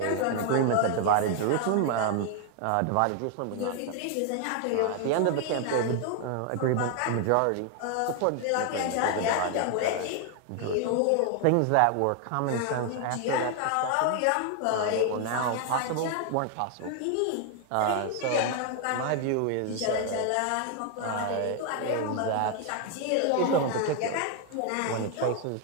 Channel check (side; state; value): both; different; correlation 0.00